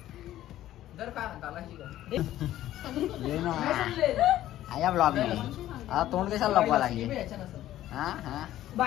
या ब्लॉग आता तोंड कशाला लपवा लागले.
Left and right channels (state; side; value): quieter; right; 13.5 dB